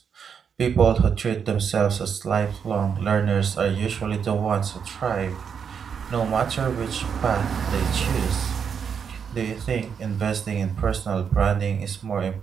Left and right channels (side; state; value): left; quieter; 7.0 dB